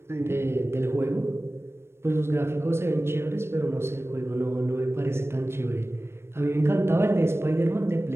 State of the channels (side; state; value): left; late; 0.12 ms